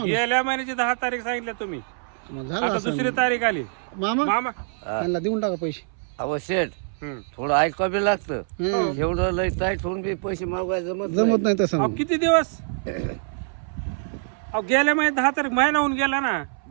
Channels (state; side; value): silent; left; 62 dB below the other